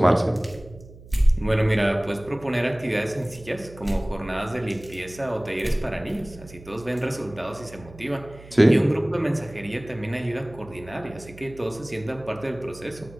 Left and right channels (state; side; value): noise; right; hum, 19 dB below the sound